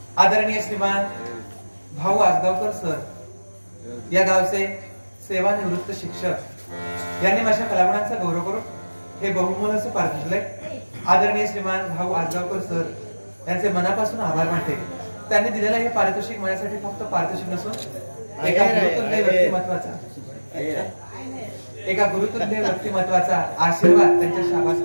आदरणीय श्रीमान भाऊ आजगावकर सर, या गावचे सेवानिवृत्त शिक्षक यांनी माझ्या कलागुणांचा गौरव करून हे बहुमोल असं पारितोषिक आदरणीय श्रीमान भाऊ आजगावकर सर यांचे मनापासून आभार मानते. त्यांनी दिलेलं हे पारितोषिक माझ्यासाठी फक्त पारितोषिक नसून एका गुरुतुल्य व्यक्तिमत्वाचा आशीर्वाद त्यांच्या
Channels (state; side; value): inverted; both; correlation -1.00